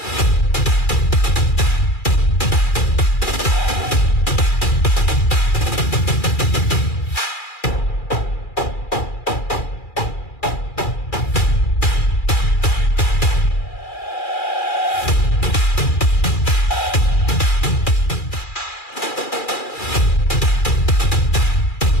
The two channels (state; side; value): late; right; 2.4 ms